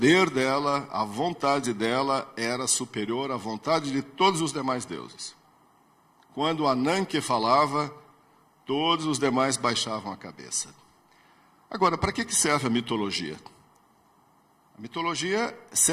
dela, a vontade dela era superior à vontade de todos os demais deuses. Quando Ananke falava, todos os demais baixavam a cabeça. Agora, para que serve a mitologia? A mitologia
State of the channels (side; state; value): both; identical; correlation 1.00